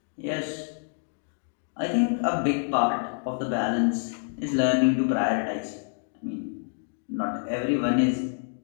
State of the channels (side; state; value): right; silent; digital silence